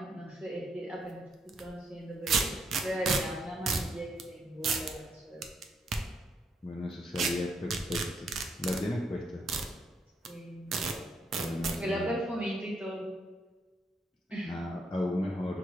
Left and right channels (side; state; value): both; normal; correlation 0.75